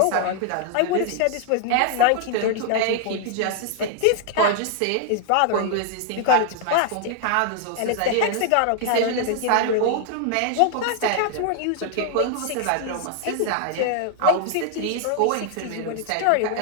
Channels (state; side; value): different; both; correlation 0.00